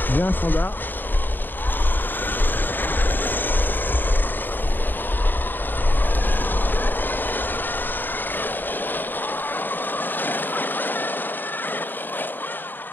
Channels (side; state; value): right; late; 0.092 ms